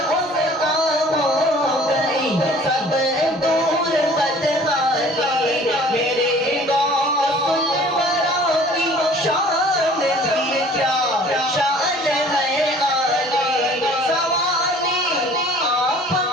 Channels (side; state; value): both; normal; correlation 0.51